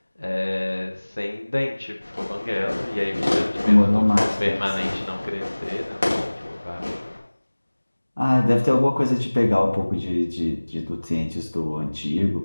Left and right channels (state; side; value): inverted; both; correlation -1.00